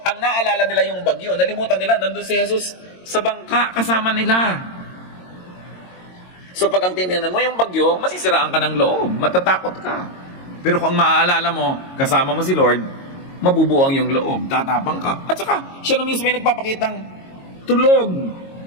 ang naalala nila yung bagyo, nalimutan nila, nandun si Jesus sa bangka, kasama nila. So pag ang tinignan mo yung bagyo, masisiraan ka ng loob, matatakot ka. Pero kung maaalala mo, kasama mo si Lord, mabubuo ang yung loob, tatapang ka. At saka, siya na mismo ay nagpapakitang tulog.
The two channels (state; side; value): late; right; 22 ms